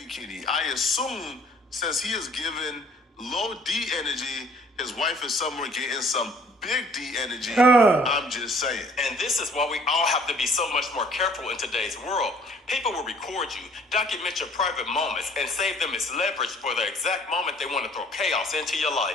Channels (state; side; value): normal; both; correlation 0.57